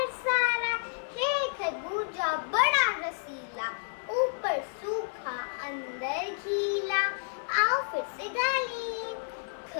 सारा। है खरबूजा बड़ा रसीला, ऊपर सूखा अंदर गीला। आओ फिर से गा लें।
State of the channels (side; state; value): right; silent; digital silence